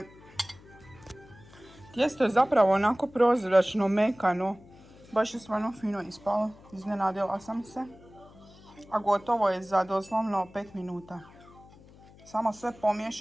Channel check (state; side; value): noise; left; hum, 23 dB below the sound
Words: Tijesto je zapravo onako prozračno, mekano. Baš je stvarno fino ispalo. Iznenadila sam se. A gotovo je za doslovno 5 minuta. Samo sve